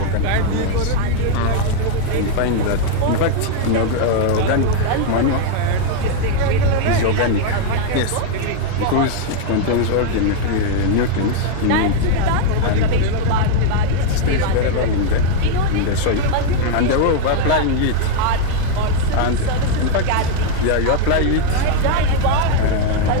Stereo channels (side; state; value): both; different; correlation 0.00